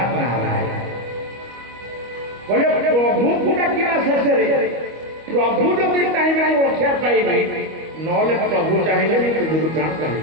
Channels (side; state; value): left; late; 25 ms